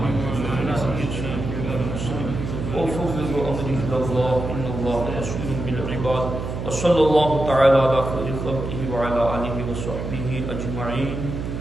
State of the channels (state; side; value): noise; right; hum, 5 dB below the sound